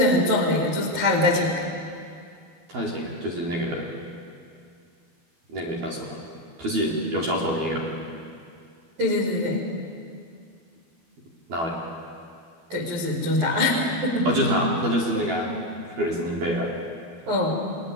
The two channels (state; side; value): late; left; 12 ms